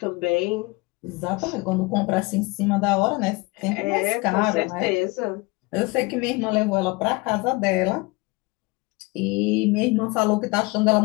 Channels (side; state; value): right; quieter; 24.8 dB